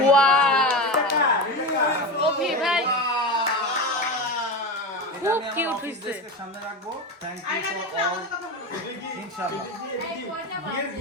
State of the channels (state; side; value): normal; both; correlation 0.21